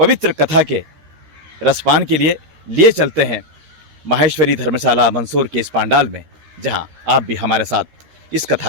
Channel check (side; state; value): left; late; 13 ms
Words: कथा के रसपान के लिए चलते हैं माहेश्वरी धर्मशाला मंदसौर के इस पांडाल में, जहां आप भी हमारे साथ इस कथा